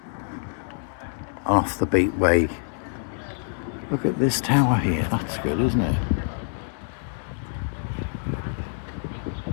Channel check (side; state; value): right; silent; digital silence